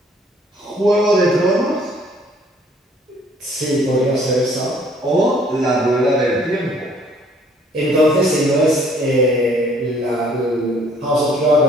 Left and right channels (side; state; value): both; normal; correlation 0.60